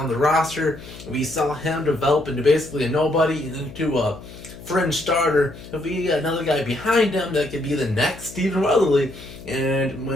the roster, we saw him develop into basically a nobody and into a fringe starter. If we get another guy behind him, that could be the next Stephen Weatherly. And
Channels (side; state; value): left; noise; hum, 16 dB below the sound